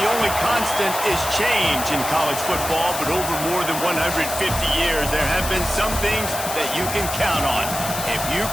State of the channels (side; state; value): left; noise; hiss, 6 dB below the sound